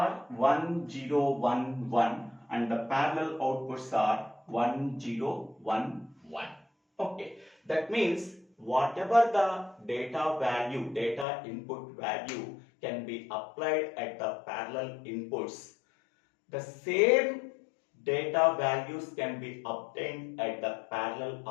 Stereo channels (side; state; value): right; drops out; at 11.2 s